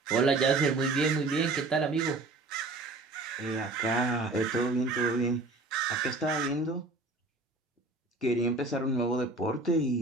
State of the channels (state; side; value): quieter; left; 3.3 dB